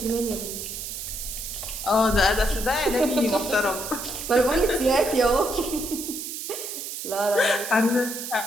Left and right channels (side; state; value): right; noise; hiss, 7 dB below the sound